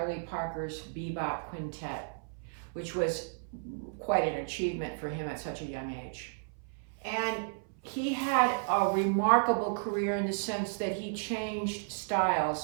Parker's bebop quintet, which was quite an achievement for him at such a young age. And he had a remarkable career in the sense that he changed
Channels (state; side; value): silent; left; 56 dB below the other